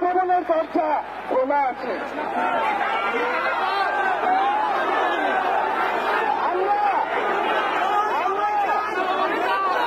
দরজা খোলা আছে।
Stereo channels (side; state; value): left; noise; hum, 28 dB below the sound